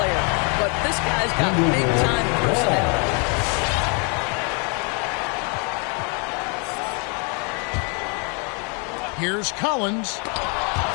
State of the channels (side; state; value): right; quieter; 35.6 dB